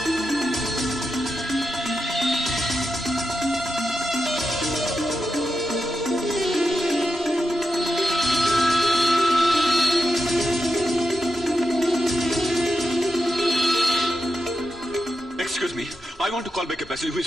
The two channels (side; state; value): both; normal; correlation 0.87